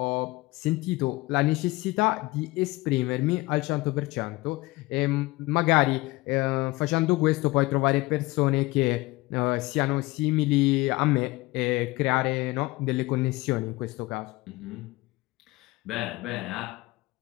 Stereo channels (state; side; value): quieter; right; 21.4 dB